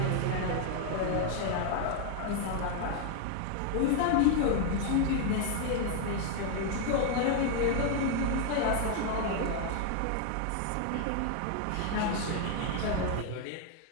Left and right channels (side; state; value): both; different; correlation 0.00